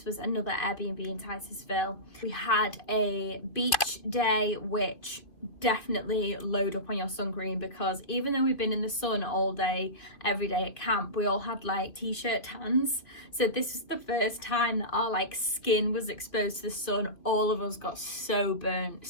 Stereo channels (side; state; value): right; late; 2.4 ms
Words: was another Airbnb in Titusville. We had a beach day, which definitely load up on your sun cream, because even though we've been in the sun all day every day at camp, we all had like t-shirt tans. So this is the first time that our like skin was exposed to the sun. All of us got so burnt,